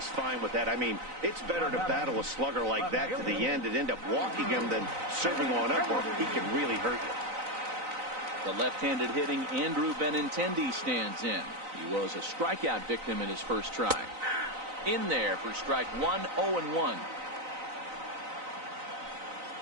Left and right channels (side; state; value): left; late; 3.9 ms